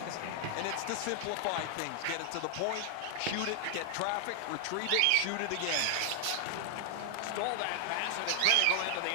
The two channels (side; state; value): both; different; correlation 0.00